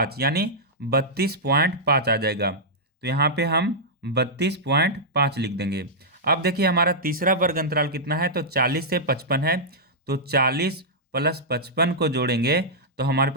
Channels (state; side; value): normal; both; correlation -0.10